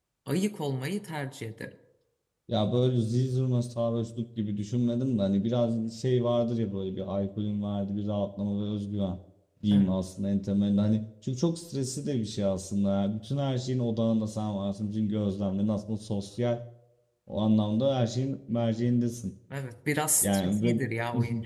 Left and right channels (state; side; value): identical; both; correlation 1.00